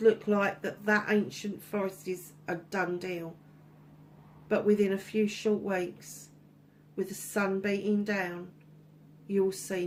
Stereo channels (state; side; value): identical; both; correlation 1.00